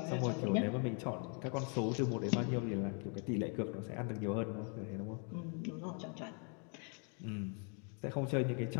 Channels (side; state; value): right; quieter; 39.4 dB